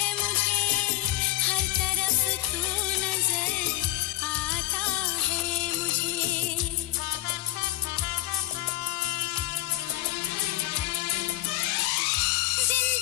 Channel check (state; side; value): quieter; right; 16.4 dB